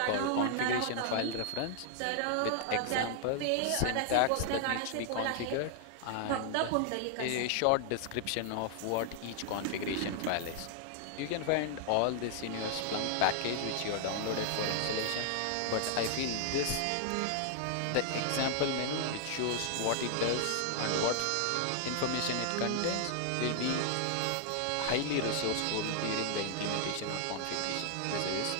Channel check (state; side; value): different; both; correlation 0.00